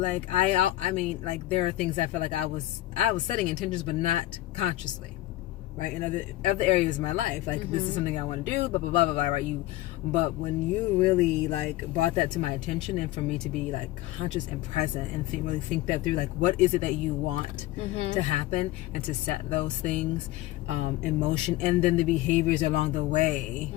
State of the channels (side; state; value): right; quieter; 16.5 dB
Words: I mean, like there are things I felt like I was setting intentions, but not consciously, right? In other areas of my life, like this is something I want to do, blah blah blah blah blah, right? But when you really like brought that to my attention, and for me to be like conscious and present and really think that through, like what is it that you want to happen, and to set those things in motion, and then the behaviors along the way,